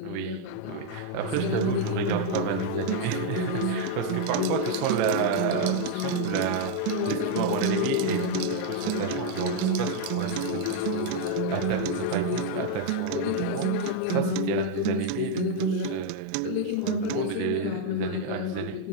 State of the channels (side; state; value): both; different; correlation 0.01